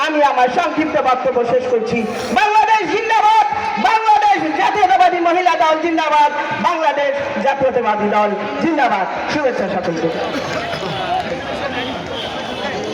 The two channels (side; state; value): both; identical; correlation 1.00